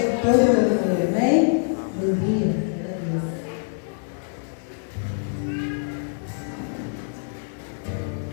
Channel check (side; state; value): right; silent; digital silence